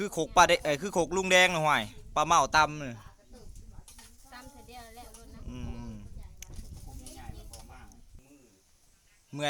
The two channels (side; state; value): both; identical; correlation 1.00